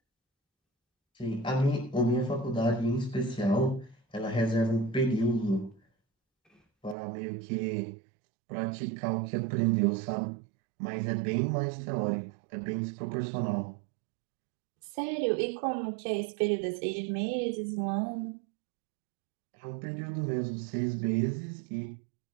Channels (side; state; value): left; drops out; at 7.0 s